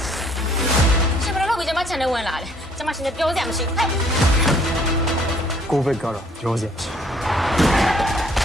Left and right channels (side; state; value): both; normal; correlation 0.61